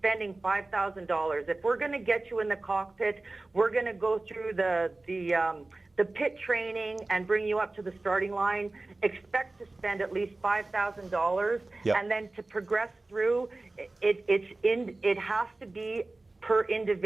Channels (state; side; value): quieter; left; 3.1 dB